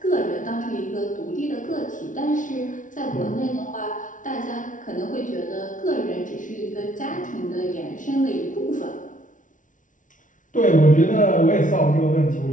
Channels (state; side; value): late; right; 0.37 ms